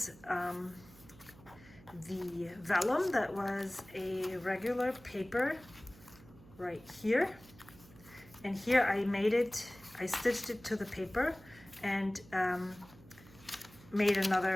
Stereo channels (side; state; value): right; noise; hum, 22 dB below the sound